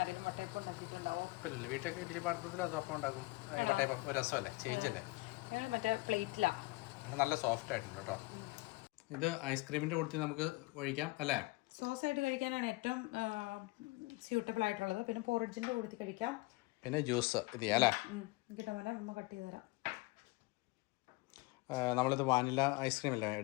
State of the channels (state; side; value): quieter; right; 23.2 dB